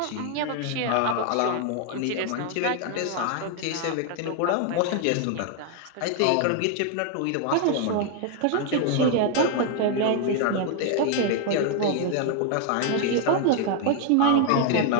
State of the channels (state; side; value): different; both; correlation 0.00